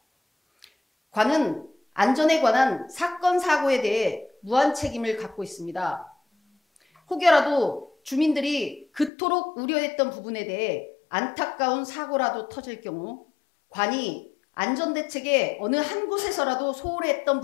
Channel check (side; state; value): right; drops out; at 9.1 s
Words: 관은 안전에 관한 사건 사고에 대해 무한 책임을 갖고 있습니다. 혹여라도 주민들이 그토록 우려했던 부분에 대해 안타까운 사고라도 터질 경우 관이 안전대책에 어느 한 곳에서라도 소홀히 했던